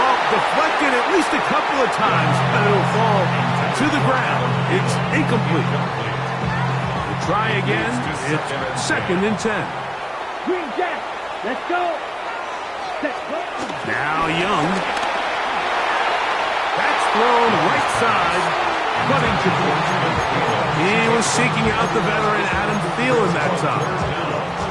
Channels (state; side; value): identical; both; correlation 1.00